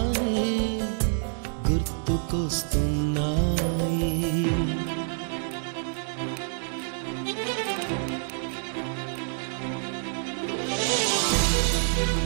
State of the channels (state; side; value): silent; left; 60 dB below the other